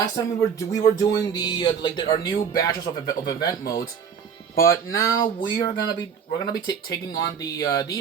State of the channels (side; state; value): left; quieter; 7.1 dB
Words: time we were doing our new batches of event modes, but now we're gonna be taking on